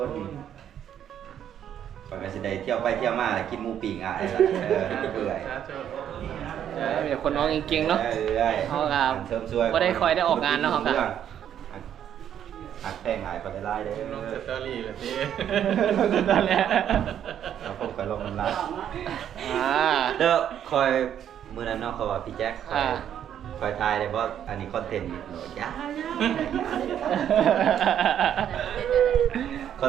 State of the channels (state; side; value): quieter; left; 9.8 dB